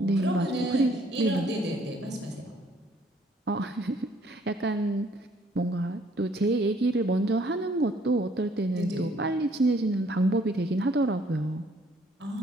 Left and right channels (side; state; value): both; normal; correlation 0.63